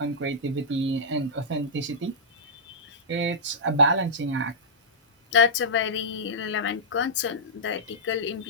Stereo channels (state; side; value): normal; both; correlation -0.13